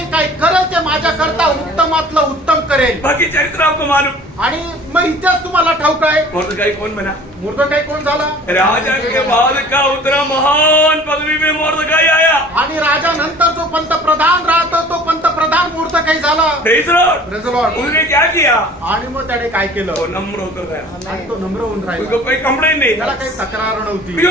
काही करेल ते माझ्याकरता उत्तमातलं उत्तम करेल। बाकी चरित्र आपको मालूम। आणि मग इतिहास तुम्हाला ठाऊक आहे, मोर्दकाई कौन बना? मोर्दकाई कोण झाला? राजा के बाद का उतना महान पदवी में मोर्दकाई आया। आणि राजा नंतर जो पंतप्रधान राहतो तो पंतप्रधान मोर्दकाई झाला। Praise the Lord। Praise the Lord। उसने क्या किया? आणि मग त्याने काय केलं? वो नम्र होकर गया, आणि तो नम्र होऊन राहिला, उसको कोई कंप्लेंट नहीं त्याला था। काही तक्रार नव्हती।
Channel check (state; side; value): normal; both; correlation 0.47